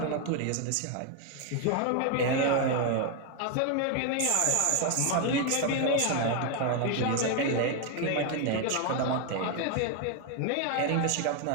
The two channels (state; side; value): different; both; correlation 0.01